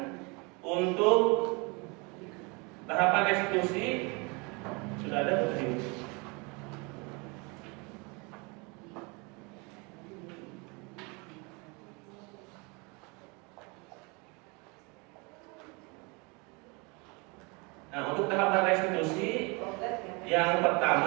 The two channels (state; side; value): quieter; left; 29.5 dB